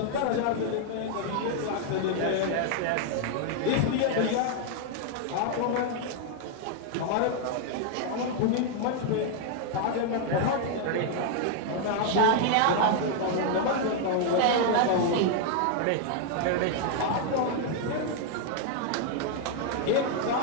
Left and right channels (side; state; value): both; different; correlation 0.00